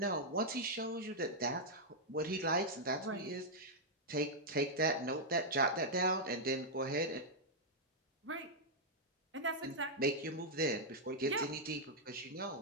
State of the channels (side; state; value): both; normal; correlation -0.05